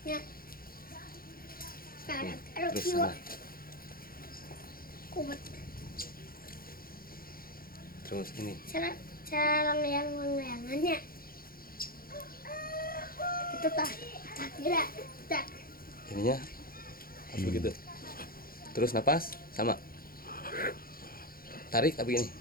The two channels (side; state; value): right; late; 0.42 ms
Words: Ya. Sekarang taruh Terus kiwa. sana. Kubat. Terus ini. Cara layangannya. Itu tak kira tak. Ininya harus begitu. Terus napas sama. Tarik tapi ini.